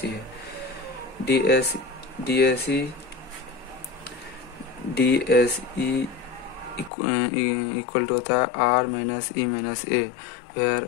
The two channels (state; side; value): drops out; right; at 6.9 s